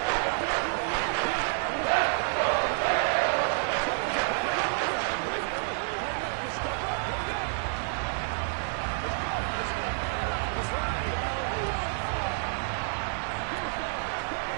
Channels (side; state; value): left; silent; 59 dB below the other